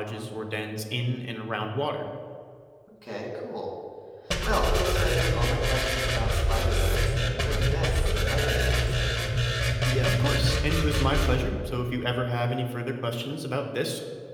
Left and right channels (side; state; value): both; identical; correlation 1.00